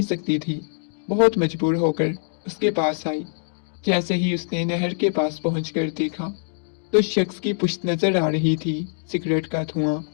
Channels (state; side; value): silent; right; digital silence